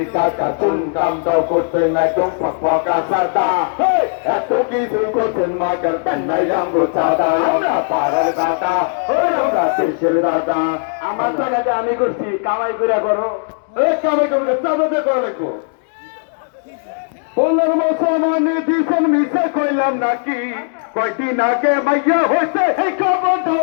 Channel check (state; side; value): silent; right; digital silence